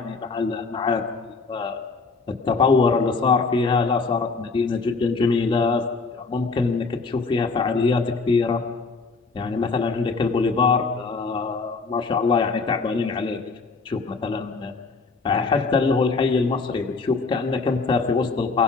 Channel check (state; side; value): quieter; right; 4.3 dB